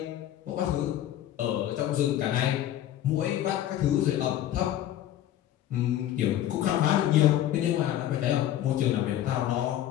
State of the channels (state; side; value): quieter; right; 12.2 dB